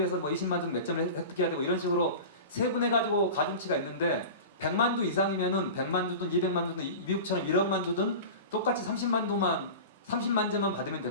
뭐 20만두는 몇 점을 획득해야 되고 이런 식으로 세분해 가지고 가중치가 있는데 100만두 이상이면은 100만두든 200만두든 미국처럼 1억만두든 똑같이 30만 점만 받으면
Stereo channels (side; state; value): both; inverted; correlation -0.32